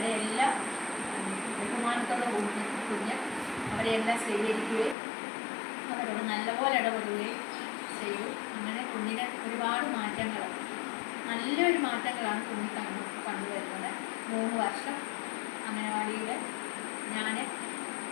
എല്ലാം ബഹുമാനത്തോടെ കുഞ്ഞ് അവരെയെല്ലാം സ്വീകരിക്കുകയും അവരോട് നല്ലപോലെ ഇടപെടുകയും ചെയ്തു. അങ്ങനെ കുഞ്ഞിന് ഒരുപാട് മാറ്റങ്ങൾ, നല്ലൊരു മാറ്റങ്ങളാണ് കുഞ്ഞ് കണ്ടുവരുന്നത്. 3 വർഷം അംഗനവാടിയിൽ ഞാൻ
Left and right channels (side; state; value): right; drops out; at 5.0 s